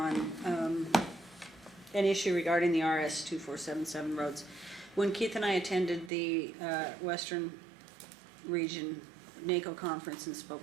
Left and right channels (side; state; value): left; drops out; at 6.1 s